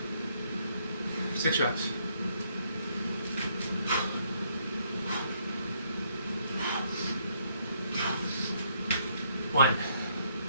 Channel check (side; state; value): both; inverted; correlation -0.70